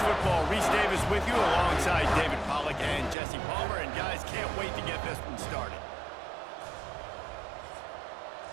Reese Davis with you alongside David Pollack and Jesse Palmer. And guys, can't wait to get this one started.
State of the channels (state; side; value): drops out; left; at 3.2 s